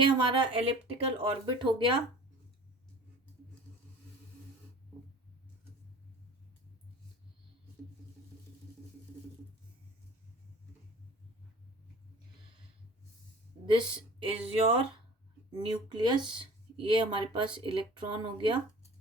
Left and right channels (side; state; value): both; normal; correlation 0.43